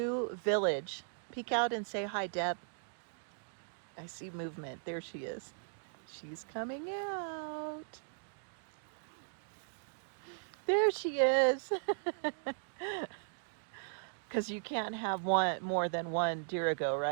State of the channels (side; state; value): left; silent; digital silence